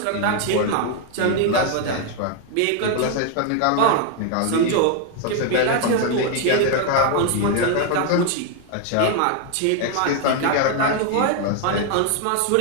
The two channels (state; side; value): different; both; correlation 0.01